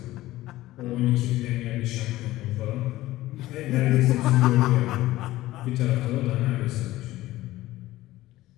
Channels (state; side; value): quieter; right; 16.5 dB